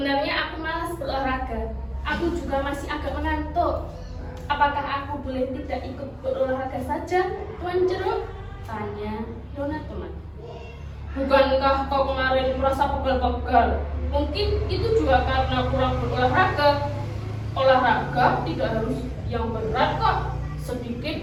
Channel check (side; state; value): both; identical; correlation 1.00